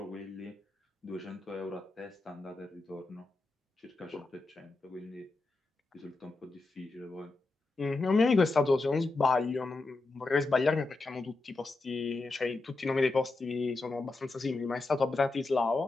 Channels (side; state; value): right; quieter; 3.4 dB